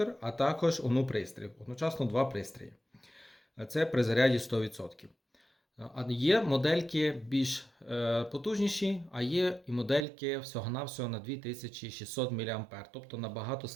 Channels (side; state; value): left; drops out; at 10.1 s